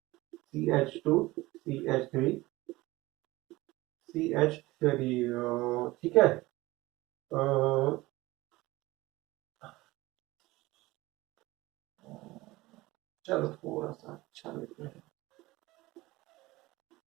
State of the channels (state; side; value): quieter; left; 19.8 dB